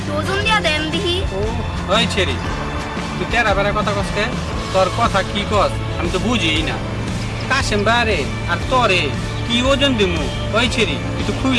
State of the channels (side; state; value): both; identical; correlation 1.00